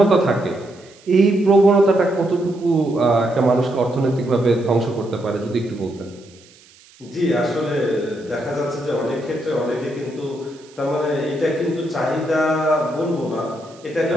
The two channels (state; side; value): noise; right; hiss, 26 dB below the sound